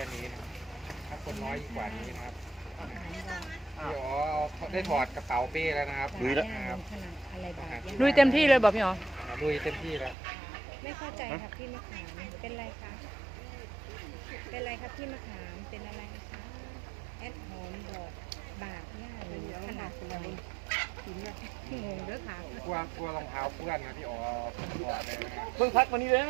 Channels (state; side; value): drops out; left; at 10.2 s